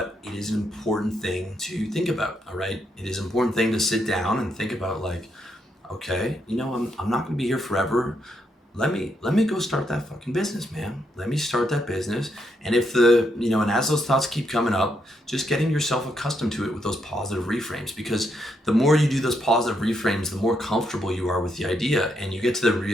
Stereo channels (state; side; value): normal; both; correlation 0.78